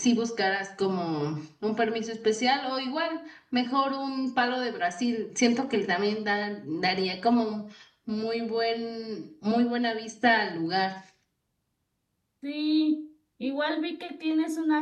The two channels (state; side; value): identical; both; correlation 1.00